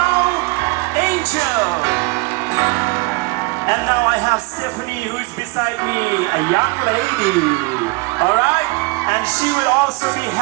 Angel. And now I have Stephanie, who is beside me, a young lady. All right, and she will also be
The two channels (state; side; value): quieter; left; 26.3 dB